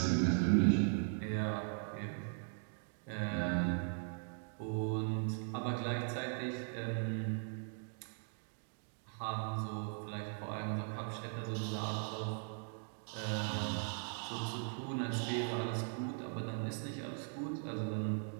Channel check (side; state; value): left; silent; 51 dB below the other